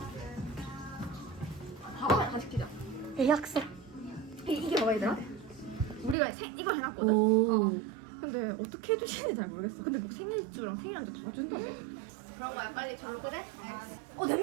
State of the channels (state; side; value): drops out; left; at 6.2 s